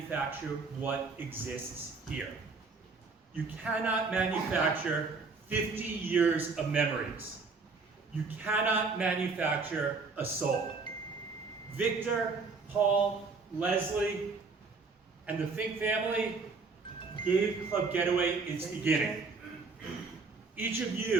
what exists here. You cannot manufacture 50 years of memories. You cannot manufacture a soul. Victor, Paul, Leslie, and the Fink family gave Club Getaway its beginning. Each of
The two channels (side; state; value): left; quieter; 4.3 dB